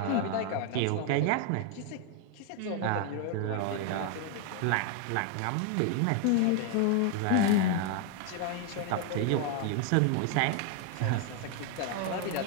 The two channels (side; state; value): both; different; correlation 0.00